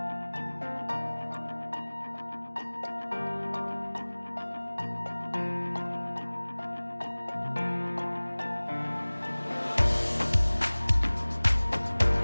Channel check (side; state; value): both; inverted; correlation -1.00